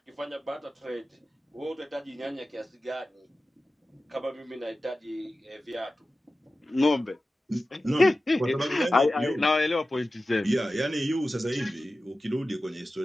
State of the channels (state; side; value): normal; both; correlation 0.95